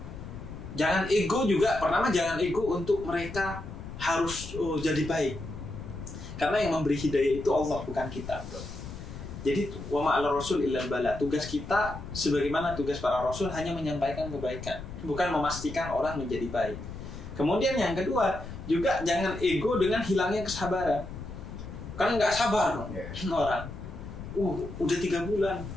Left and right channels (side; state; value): left; noise; rumble, 10 dB below the sound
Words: Jangan ego juga, pertama jangan ego untuk mereka harus jadi baik. Karena yang memberi hidayah itu Allah, bukan kita. Jadi wa ma'al rasul illal bala. Tugas kita sebagaimana tugas para rasul hanya menyampaikan kebaikan, bukan memastikan orang menjadi baik. Kemudian yang kedua, juga jangan ego dengan hilangnya kesabaran. Kan nggak sabar orang. Udah 3 bulan.